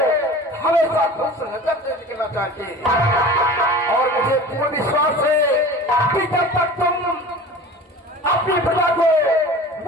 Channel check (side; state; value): both; normal; correlation 0.39